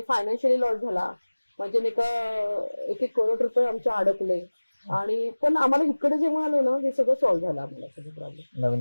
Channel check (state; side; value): inverted; both; correlation -1.00